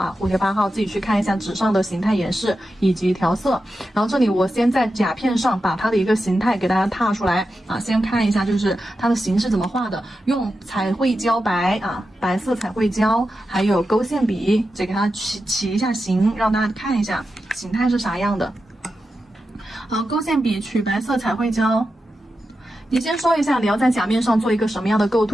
蝴蝶8号自己去看一下纸上的形态演示以及调色。然后这里我先在甲片上把它的一个形态给大家踏出来啊，先看一下就是它的形是怎么画的，用彩绘胶白啊，白色彩绘胶，还有勾线笔，这给它起一下形，让大家看一下形态是啥样的。好，勾线笔取白色彩绘胶。你先说一下你要在甲面上做一个什么样的构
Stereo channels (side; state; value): both; normal; correlation 0.90